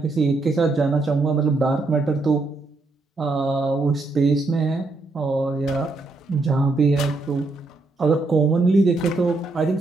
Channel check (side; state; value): left; quieter; 3.3 dB